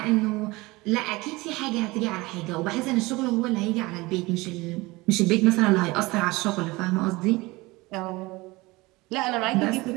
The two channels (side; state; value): left; quieter; 22.1 dB